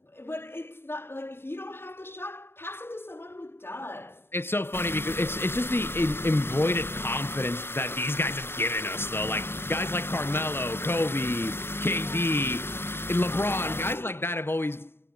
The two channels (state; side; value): late; right; 0.11 ms